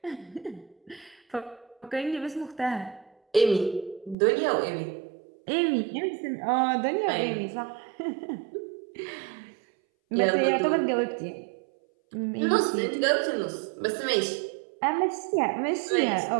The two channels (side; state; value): left; drops out; at 4.2 s